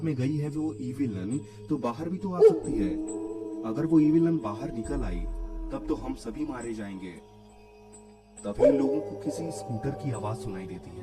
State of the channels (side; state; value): both; identical; correlation 1.00